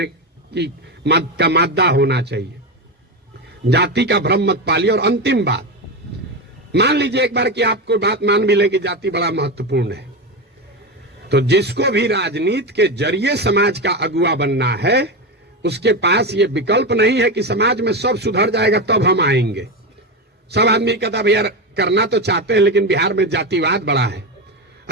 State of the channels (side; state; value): both; normal; correlation 0.16